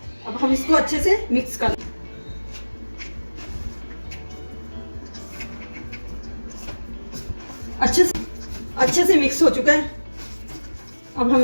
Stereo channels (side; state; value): both; inverted; correlation -1.00